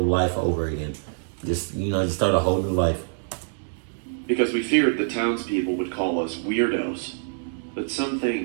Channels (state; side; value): silent; left; digital silence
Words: life over again. Just start a whole new life. Because we feared the townspeople would call us weirdos. But some